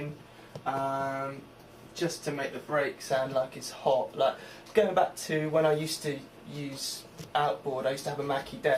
just to make the break sound like it's hot. Like going back to when I used to use Outboard, I used to have a Mackie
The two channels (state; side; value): identical; both; correlation 1.00